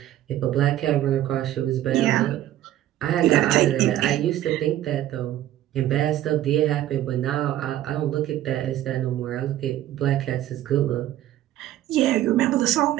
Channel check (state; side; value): quieter; left; 13.2 dB